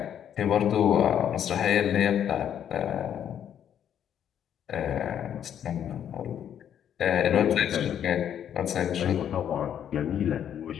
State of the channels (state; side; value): quieter; right; 9.5 dB